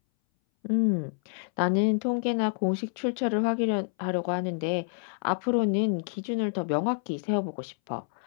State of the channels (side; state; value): right; silent; 59 dB below the other